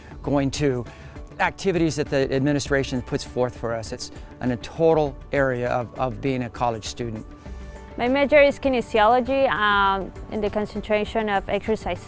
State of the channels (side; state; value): both; identical; correlation 1.00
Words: going to activities that the administration puts forth for us. It's in a total area of being a college student. My major is kinesiology in the concentration of exercise